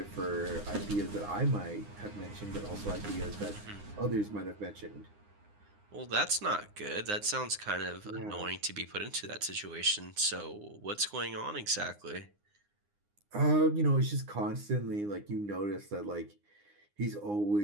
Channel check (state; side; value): late; left; 9.7 ms